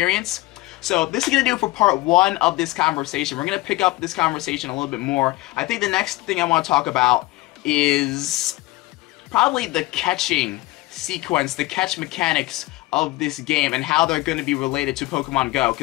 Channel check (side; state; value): right; quieter; 19.6 dB